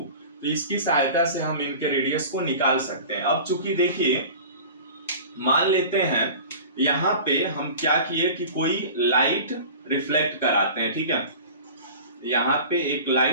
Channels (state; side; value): inverted; both; correlation -0.38